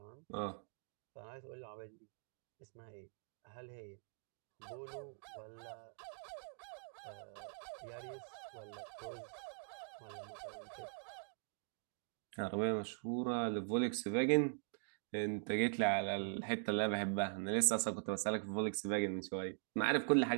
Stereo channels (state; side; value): silent; left; digital silence